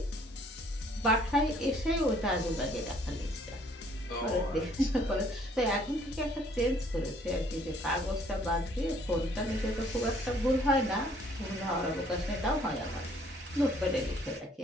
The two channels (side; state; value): both; normal; correlation 0.61